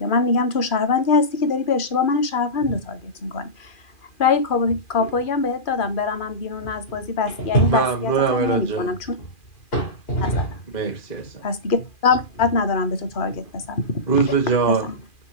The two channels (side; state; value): right; late; 2.4 ms